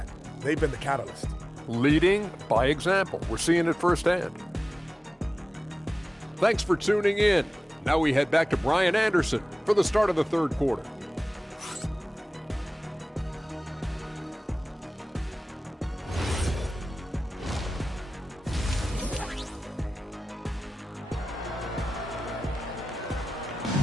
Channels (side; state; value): both; normal; correlation 0.96